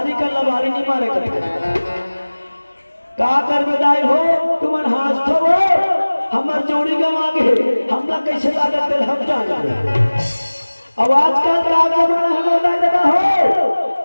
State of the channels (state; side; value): inverted; both; correlation -1.00